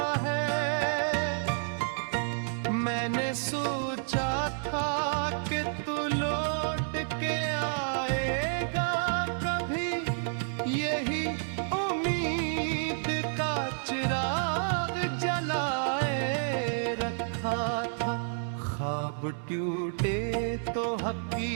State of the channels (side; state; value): left; silent; digital silence